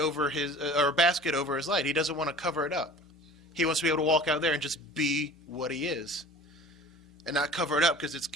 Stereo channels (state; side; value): normal; both; correlation 0.42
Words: his or a basket over his light. He doesn't want to cover it up. He wants to be able to walk out there and just be what he is, and not cover it up because it's